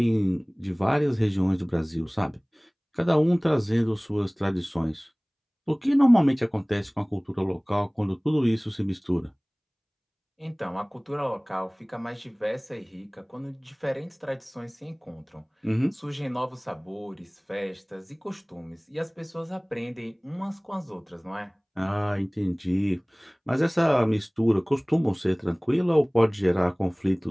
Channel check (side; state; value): both; identical; correlation 1.00